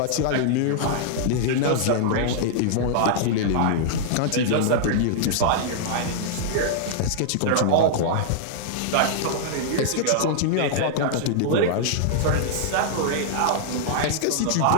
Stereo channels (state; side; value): different; both; correlation -0.01